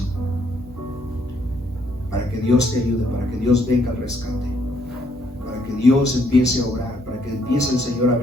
para que Dios te ayude, para que Dios venga al rescate, para que Dios empiece a orar, para que empiece el Señor a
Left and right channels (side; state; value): both; normal; correlation 0.70